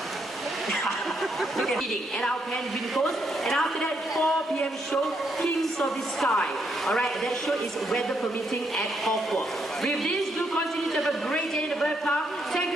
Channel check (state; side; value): normal; both; correlation 0.76